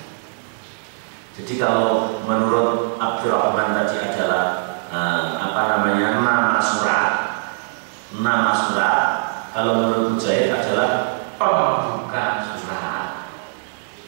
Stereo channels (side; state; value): left; silent; digital silence